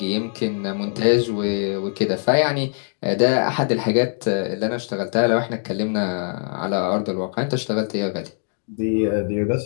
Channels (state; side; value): silent; right; digital silence